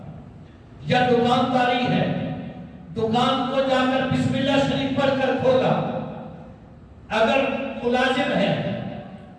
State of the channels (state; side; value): identical; both; correlation 1.00